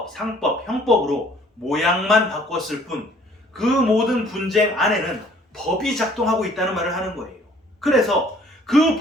상법, 형법으로 모양만 바꿨을 뿐, 그 모든 분쟁 안에는 법이 작동하고 있다는 말을 하는 거예요. 그래서 그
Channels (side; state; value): both; normal; correlation 0.57